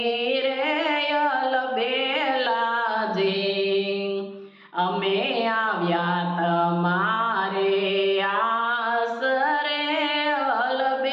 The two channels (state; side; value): identical; both; correlation 1.00